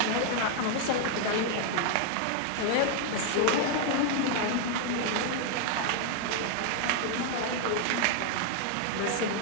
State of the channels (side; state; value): both; different; correlation 0.00